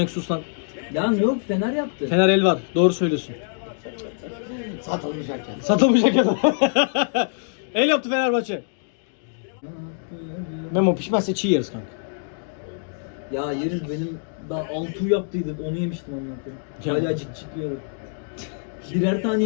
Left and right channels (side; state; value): right; silent; digital silence